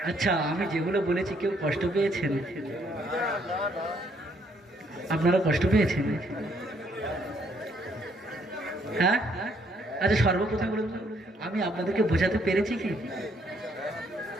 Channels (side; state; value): both; normal; correlation 0.69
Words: আচ্ছা, আমি যেগুলো বলেছি কেউ কষ্ট পেয়েছেন? আপনারা কষ্ট পেয়েছেন? হ্যাঁ? আচ্ছা, সর্বপ্রথম বলুন, আমি আপনাদেরকে বোঝাতে পেরেছি কি?